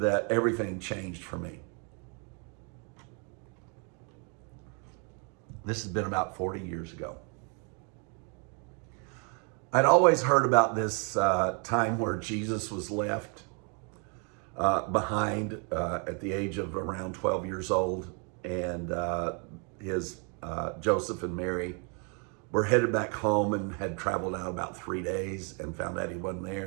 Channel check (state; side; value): quieter; left; 36.8 dB